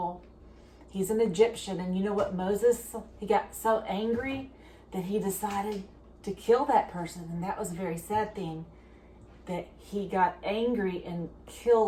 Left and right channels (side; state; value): both; identical; correlation 1.00